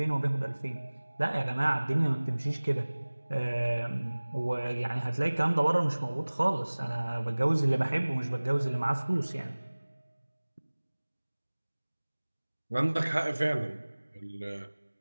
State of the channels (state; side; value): inverted; both; correlation -1.00